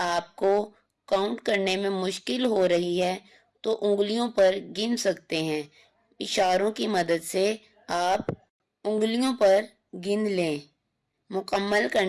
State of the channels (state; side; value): identical; both; correlation 1.00